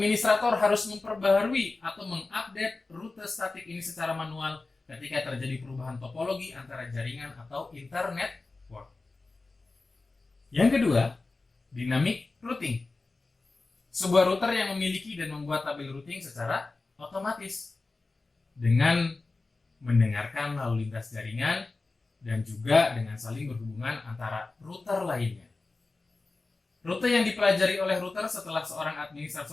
harus memperbaharui atau mengupdate rute statik ini secara manual ketika terjadi perubahan topologi antara jaringan atau internet network. Yang kedua, dynamic routing. Sebuah router yang memiliki dan membuat tabel routing secara otomatis dengan mendengarkan lalu lintas jaringan dan juga dengan saling berhubungan antara router lainnya. Rute yang dipelajari oleh router setelah seorang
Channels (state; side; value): quieter; right; 3.6 dB